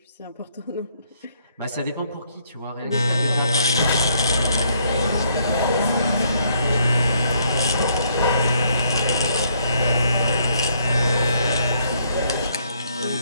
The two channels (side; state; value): both; inverted; correlation -0.69